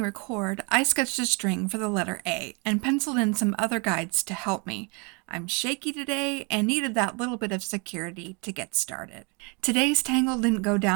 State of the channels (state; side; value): quieter; left; 32.4 dB